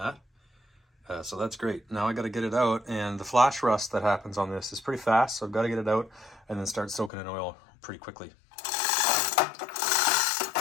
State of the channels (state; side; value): drops out; right; at 7.1 s